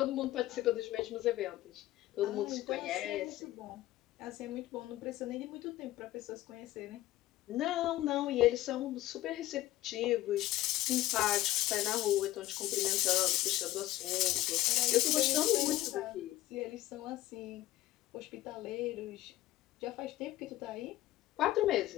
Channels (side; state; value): right; quieter; 15.6 dB